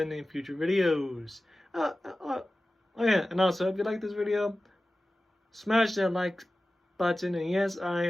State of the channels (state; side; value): normal; both; correlation 0.96